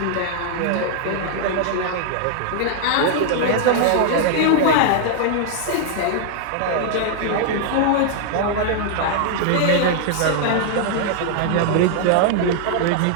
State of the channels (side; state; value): both; different; correlation -0.01